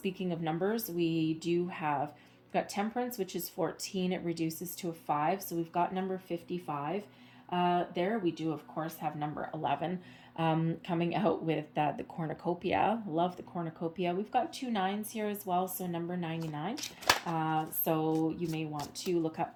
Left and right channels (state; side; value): identical; both; correlation 1.00